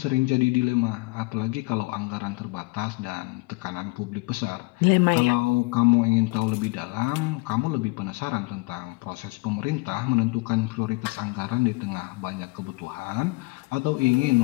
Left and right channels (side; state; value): right; quieter; 25.8 dB